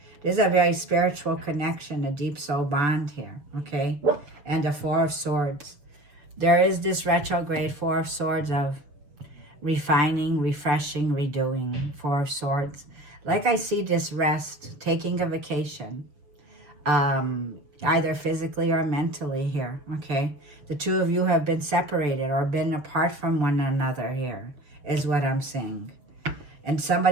There's a very spiritual connection, a deep soul bond here, okay? And the 4 of Swords. There is this retrograde 4 of Swords of refining, refreshing, redoing. 4 of Swords. Like I see this rest, taking a vacation, either physically or mentally here, okay? The 2 of you have been separated or been apart from one another here, is what I'm seeing. And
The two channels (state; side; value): late; left; 6.8 ms